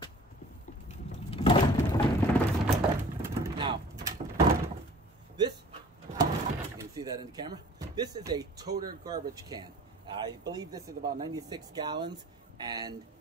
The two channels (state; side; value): normal; both; correlation 0.49